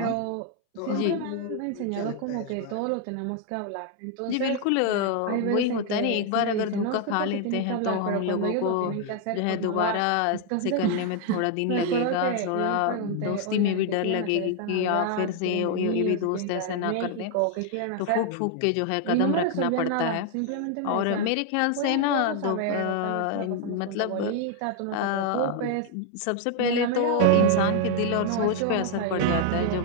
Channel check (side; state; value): both; different; correlation 0.00